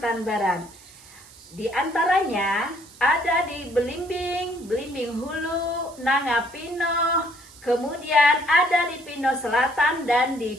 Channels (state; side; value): noise; right; hiss, 22 dB below the sound